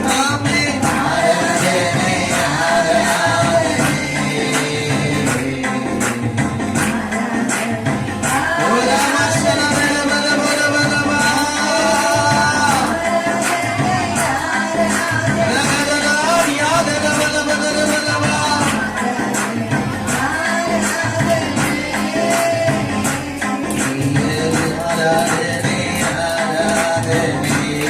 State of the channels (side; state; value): both; identical; correlation 1.00